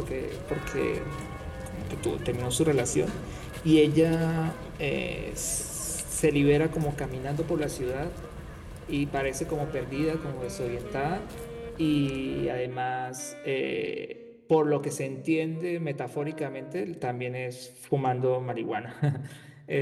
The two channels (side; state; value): both; identical; correlation 1.00